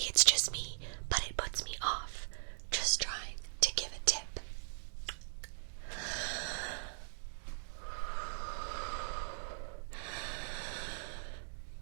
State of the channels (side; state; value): left; silent; digital silence